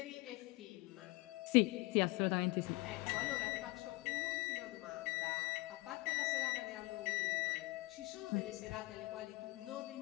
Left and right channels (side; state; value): right; quieter; 22.8 dB